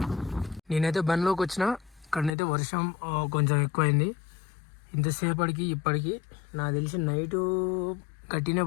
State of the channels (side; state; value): right; drops out; at 2.3 s